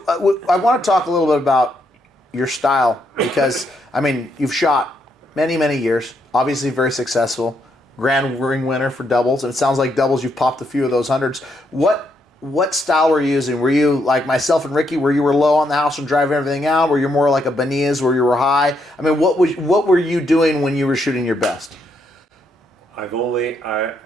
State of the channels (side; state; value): both; normal; correlation 0.77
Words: I want to talk a little bit about your style because, I mean, you've shot many, many years, obviously very successful, grand ring winner for doubles, and it sounds like doubles you've popped a few of those hundreds. What style were you using? Were you like myself and Ricky, where you were low on the house and driving everything out? Were you more like a Benitez, where you were high? I mean, what were you doing when you were shooting your best? I